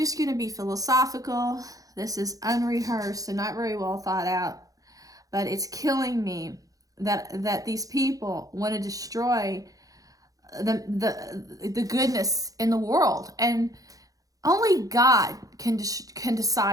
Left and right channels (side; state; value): left; late; 0.17 ms